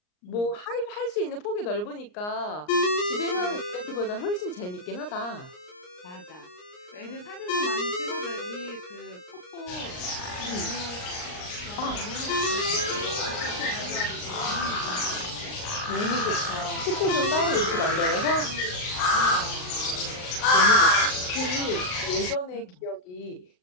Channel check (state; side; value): late; right; 39 ms